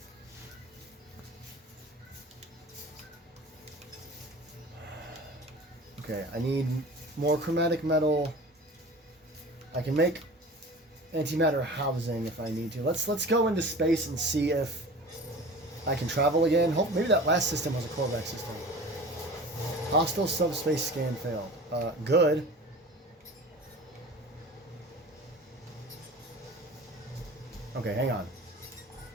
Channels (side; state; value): both; normal; correlation 0.39